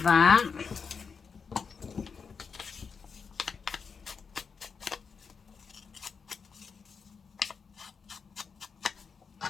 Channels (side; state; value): right; quieter; 5.7 dB